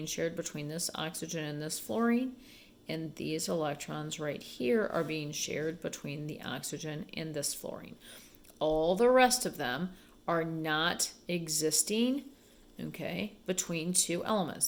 shared between this oxygen and this fluorine, and these electrons right here are being shared between the oxygen and this fluorine. All the rest of them are not existing, okay, between two elements.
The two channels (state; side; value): identical; both; correlation 1.00